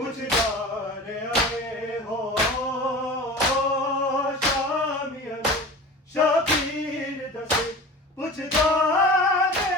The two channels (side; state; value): both; normal; correlation 0.35